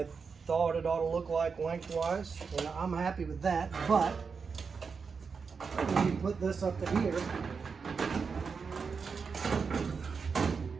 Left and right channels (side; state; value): left; quieter; 5.4 dB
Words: thought it ought to look like lengthwise, and I'm happy with that. But when you put this up to here,